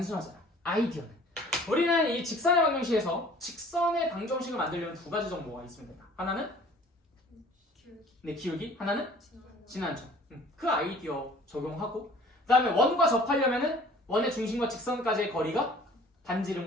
아이디어는 우리는 이 직선의 방정식에서 직선의 방정식을 만들려면 두 가지 정보가 있으면 된다. 하나는 기울기 하나는 진한점. 그 아이디어 적용하고 그 다음에 원과 접하려면은 원의 중심과 직선까지의 거리가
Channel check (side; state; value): both; normal; correlation 0.51